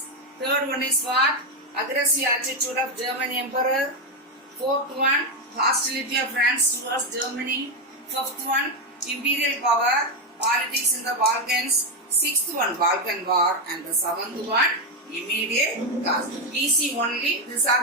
Third one is what? Aggressive attitude of German emperor. Fourth one, hostility of France towards Germany. Fifth one, imperial power, politics in the Balkans. Sixth one, Balkan War. And the seventh one, immediate cause. Easy only. These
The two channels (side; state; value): both; normal; correlation 0.07